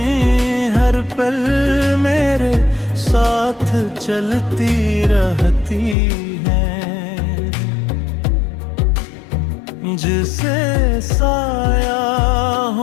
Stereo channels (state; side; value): drops out; right; at 6.0 s